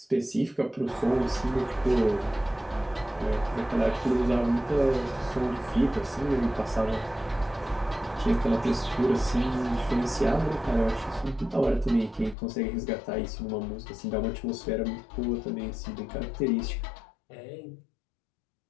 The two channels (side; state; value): right; drops out; at 12.4 s